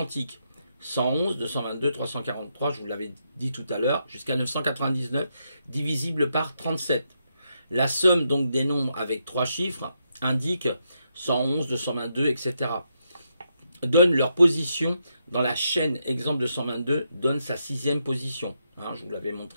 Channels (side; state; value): both; inverted; correlation -0.81